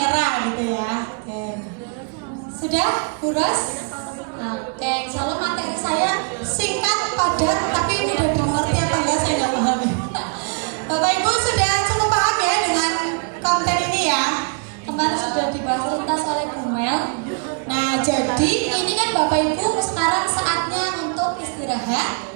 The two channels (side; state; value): left; quieter; 39.1 dB